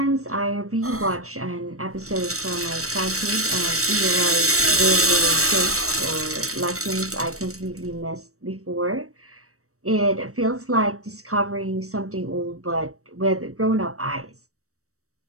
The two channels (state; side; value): late; left; 0.65 ms